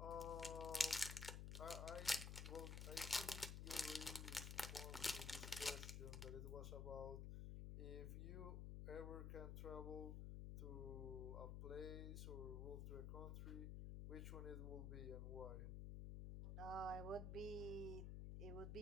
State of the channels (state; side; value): noise; left; hum, 3 dB below the sound